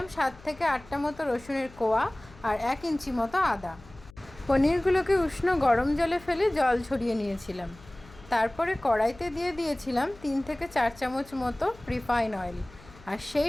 7 থেকে 8টা মতো রসুনের কোয়া আর 1 ইঞ্চি মতো আদা। পনিরগুলোকে উষ্ণ গরম জলে ফেলে জল ছড়িয়ে নিয়েছিলাম। তারপরে কড়াইতে দিয়ে দিয়েছিলাম 3 থেকে 4 চামচ মতো রিফাইন অয়েল, আর সেই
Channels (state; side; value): noise; left; hum, 22 dB below the sound